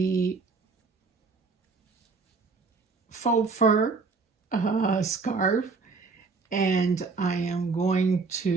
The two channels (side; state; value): left; quieter; 4.4 dB